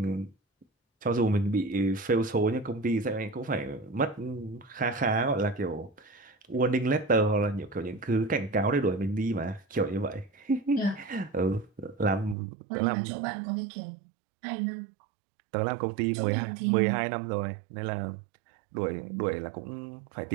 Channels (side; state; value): left; drops out; at 12.4 s